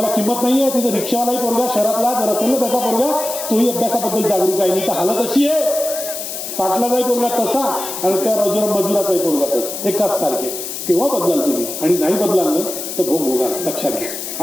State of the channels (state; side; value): noise; left; hiss, 7 dB below the sound